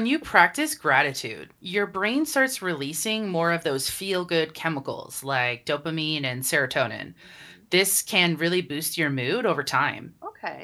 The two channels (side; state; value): both; identical; correlation 1.00